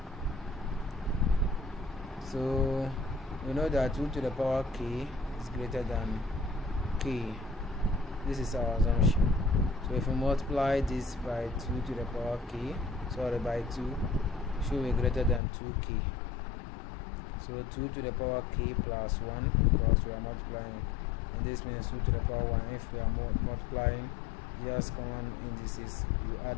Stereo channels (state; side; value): drops out; right; at 15.4 s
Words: So we know that 2 to the power k is greater than k. This is our assumption. So if we multiply this by 2 to the power k, by 2, should be greater than 2k. So 2 to the power k plus 1, because we are multiplying, and this means 2 to the power 1. If we are multiplying, just common indices, you